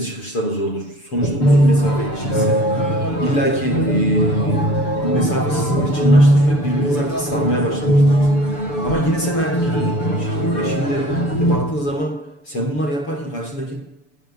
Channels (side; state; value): right; late; 6.9 ms